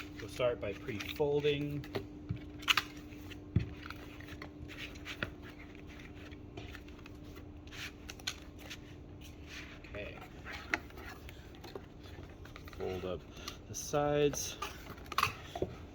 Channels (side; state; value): both; identical; correlation 1.00